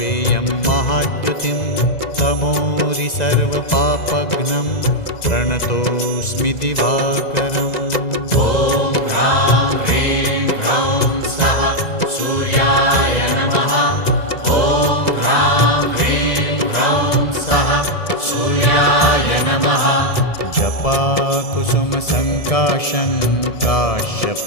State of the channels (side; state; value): right; late; 2.0 ms